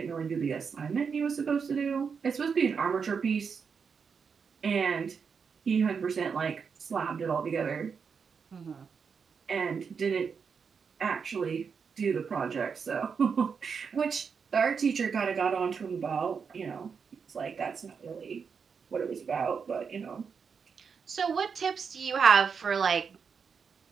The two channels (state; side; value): quieter; left; 6.0 dB